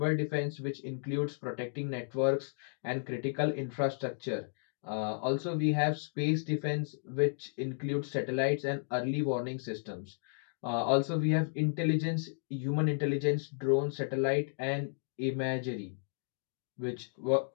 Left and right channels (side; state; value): right; silent; digital silence